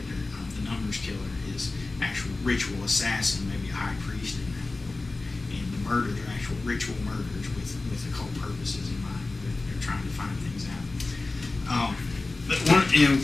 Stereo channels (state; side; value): quieter; right; 3.4 dB